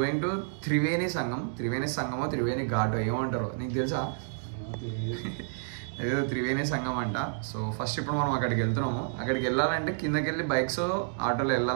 to Triveni Sangam Triveni Ghat ఏమంటారు నీకు తెలుసా? అదేదో త్రివేణి సంగం అంట. సో ఫస్ట్ ఇప్పుడు మనం అక్కడికి వెళ్తున్నాము. అక్కడికి వెళ్ళాలంటే కిందకి వెళ్ళి బైక్స్ ఆటోలో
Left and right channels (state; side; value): silent; left; digital silence